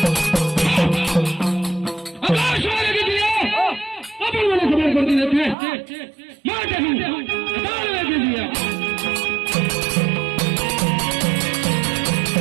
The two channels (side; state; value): left; drops out; at 5.6 s